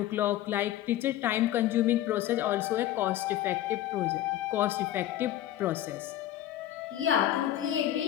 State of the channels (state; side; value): quieter; right; 13.0 dB